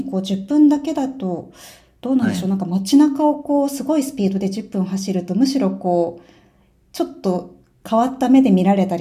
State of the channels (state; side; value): identical; both; correlation 1.00